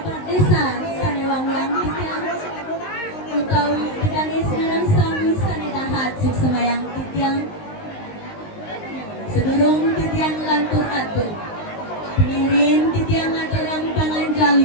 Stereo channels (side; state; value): right; late; 19 ms